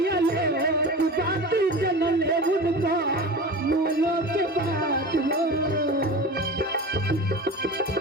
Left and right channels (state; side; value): normal; both; correlation 0.32